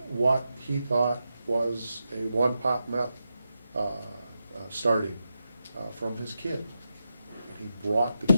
what he thought was a one-pot meth starting from his kid. And he brought the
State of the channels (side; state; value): both; inverted; correlation -0.88